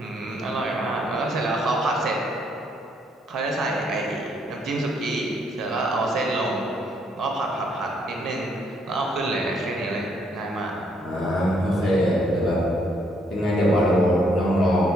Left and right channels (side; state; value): both; normal; correlation 0.70